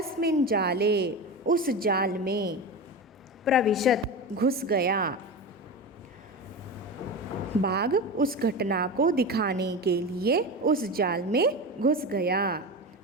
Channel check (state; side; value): normal; both; correlation 0.24